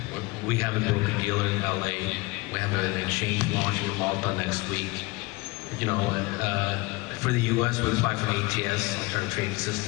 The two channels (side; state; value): right; quieter; 23.4 dB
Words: We have a broker-dealer in L.A. We have an exchange launching in Malta next week. For the U.S., we apply for an ATS, alternative trading